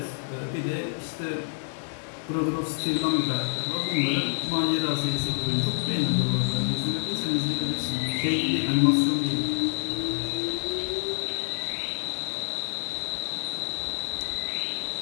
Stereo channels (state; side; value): silent; right; digital silence